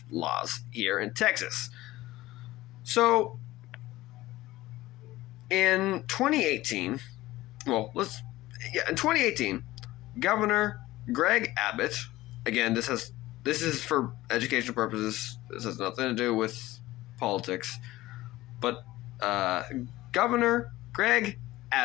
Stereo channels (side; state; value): right; quieter; 17.3 dB